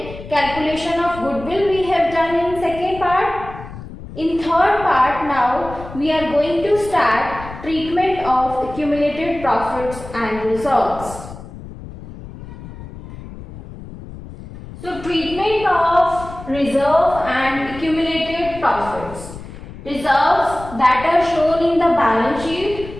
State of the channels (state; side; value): noise; left; rumble, 14 dB below the sound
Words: calculation of goodwill we have done in second part. In third part now we are going to start treatment of accumulated profits and reserves. So treatment of reserve and accumulated profits. Reserves that are shown in the balance